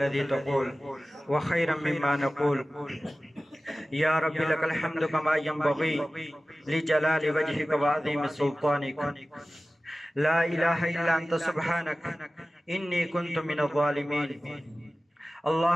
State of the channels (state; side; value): normal; both; correlation 0.96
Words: تقول وخيرا مما نقول. یا رب لك الحمد كما ينبغي لجلال وجهك وعظيم سلطانك. لا إله إلا أنت سبحانك إني كنت من الظالمين.